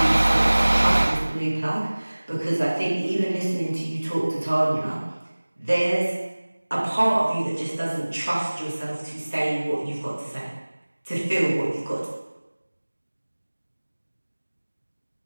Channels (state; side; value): inverted; both; correlation -1.00